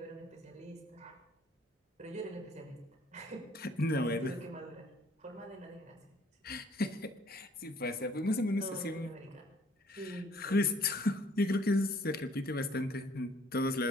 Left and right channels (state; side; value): normal; both; correlation 0.60